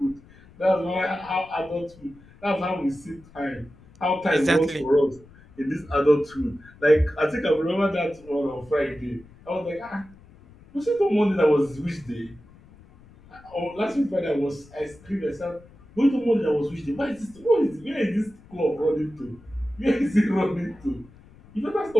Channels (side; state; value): left; noise; rumble, 24 dB below the sound